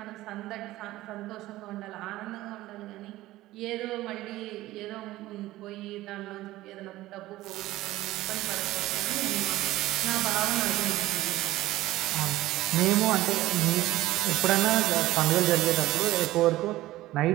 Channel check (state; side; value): quieter; left; 16.7 dB